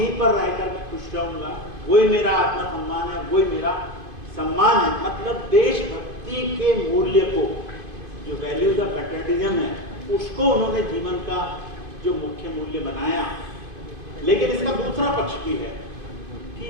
पर रहकर मैं खुश रहूंगा, वही मेरा आत्मसम्मान है, वही मेरा सम्मान है। मतलब देशभक्ति के मूल्य को, जो वैल्यूज ऑफ पैट्रियटिज्म है, उसको उन्होंने जीवन का जो मुख्य मूल्य बनाया। लेकिन इसका दूसरा पक्ष भी है कि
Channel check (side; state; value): left; late; 2.5 ms